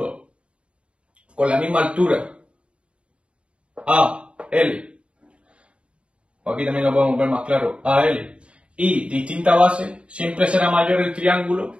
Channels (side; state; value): left; late; 0.059 ms